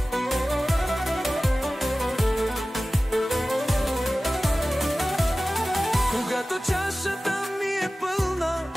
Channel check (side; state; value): both; normal; correlation 0.97